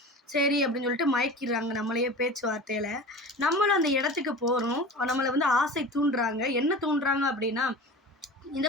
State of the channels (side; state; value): both; normal; correlation 0.35